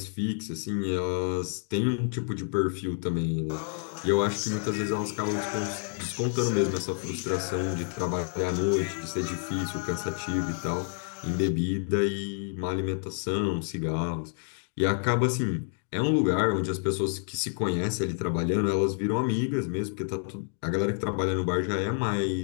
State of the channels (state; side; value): silent; right; 58 dB below the other